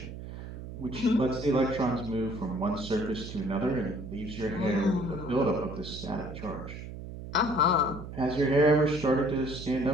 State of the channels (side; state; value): right; noise; hum, 10 dB below the sound